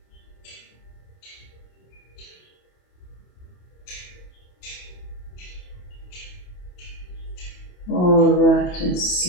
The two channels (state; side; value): late; right; 28 ms